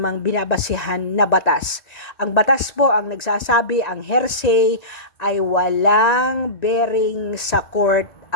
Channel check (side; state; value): right; late; 1.9 ms